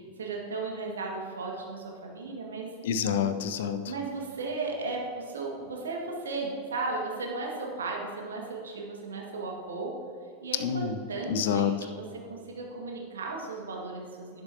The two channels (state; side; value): normal; both; correlation -0.17